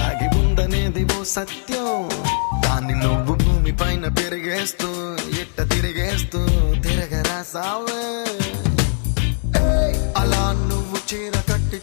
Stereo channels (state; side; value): silent; right; digital silence